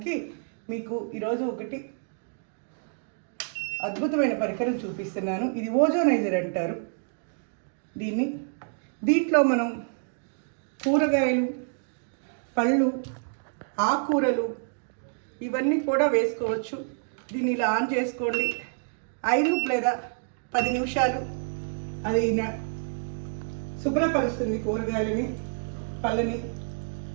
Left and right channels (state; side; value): silent; left; digital silence